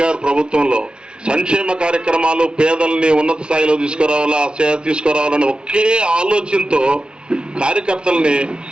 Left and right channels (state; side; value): late; left; 0.056 ms